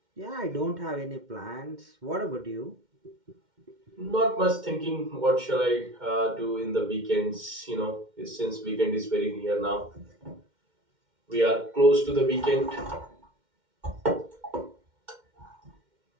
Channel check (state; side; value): late; left; 2.1 ms